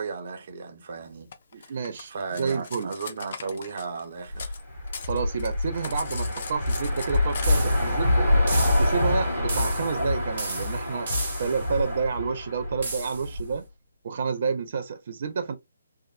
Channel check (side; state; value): both; inverted; correlation -0.82